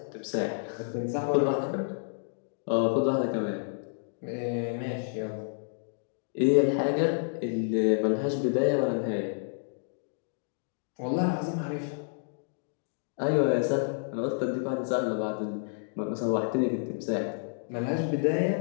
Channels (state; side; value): silent; right; digital silence